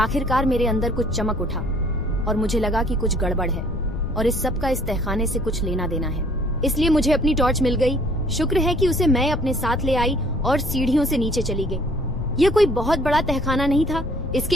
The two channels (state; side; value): noise; left; rumble, 7 dB below the sound